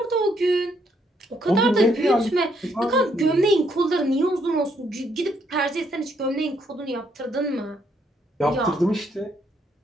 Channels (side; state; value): both; normal; correlation 0.72